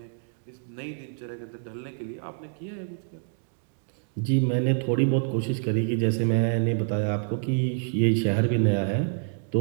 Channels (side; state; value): left; silent; digital silence